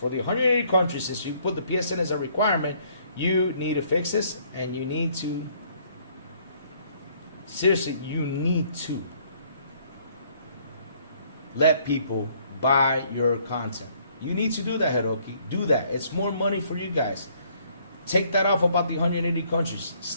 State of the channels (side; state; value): both; inverted; correlation -0.64